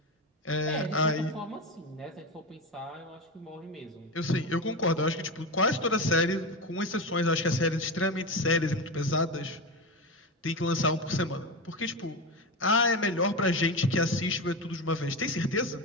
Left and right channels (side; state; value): both; normal; correlation 0.19